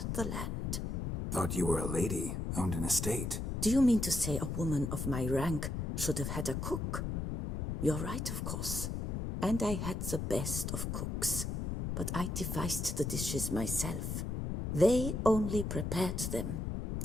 the land. Thought you were a lady, owned an estate. Do you mean to say a woman of my rank should have had a cook? You're right, of course. And I had the best of cooks. But I devised the dishes myself. They only prepared them.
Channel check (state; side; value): noise; left; rumble, 2 dB below the sound